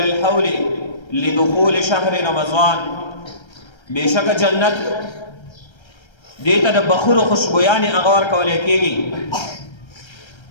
الحول لدخول شهر رمضان. بشك جنت دیتا دا بخور خوشبویانی اغوار کولی کیگی.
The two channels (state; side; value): late; right; 1.3 ms